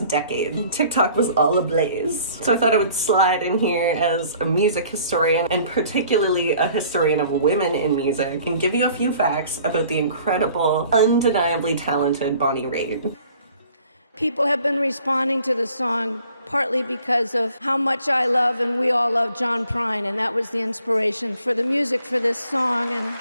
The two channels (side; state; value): both; inverted; correlation -0.55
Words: decade? TikTok was all ablaze. So I thought I would slide in here as a music historian, and particularly a historian of women in music, and give you a few facts about the incredible, undeniably talented Bonnie Raitt. People have been responding to the song partly because of how much I love and we all love John Prine, and that was the inspiration for the music for this song and